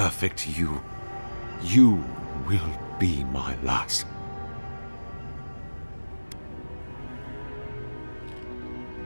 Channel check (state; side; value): inverted; both; correlation -1.00